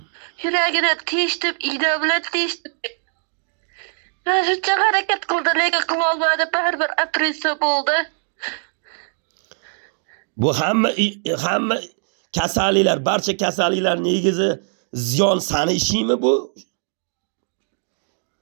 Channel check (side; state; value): left; silent; digital silence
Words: Yuragini teshdim, igna bilan teshdim. Men shuncha harakat qildim, lekin qila olmadim, baribir operatsiya bo'ldi. Bu hamma kasalliklar, barcha kasalliklar negizi ziyon sani ishingmi bu?